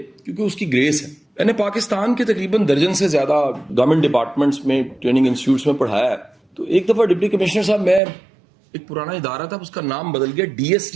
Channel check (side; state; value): left; drops out; at 8.0 s